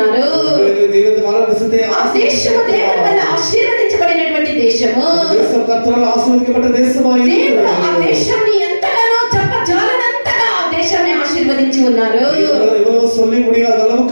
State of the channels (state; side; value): inverted; both; correlation -1.00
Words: దేవుని కానాను దేశത്തെ ఆ దేశము దేవుని వల్ల ఆశీర్వదించబడినటువంటి దేశము. దేశం కర్తరాல் ఆశీర్వదించబడ్డ దేశమాయి. దేవుడు ఆ దేశాన్ని ఎంతగానో చెప్పజాలనంతగా ఆ దేశాన్ని ఆశీర్వదించి ఉన్నారు. ఎవరో சொல்லி முடியாத